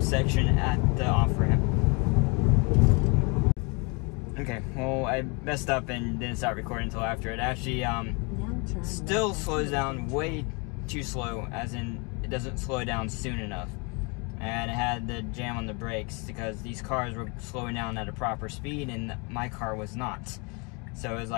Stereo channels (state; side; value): quieter; right; 31.3 dB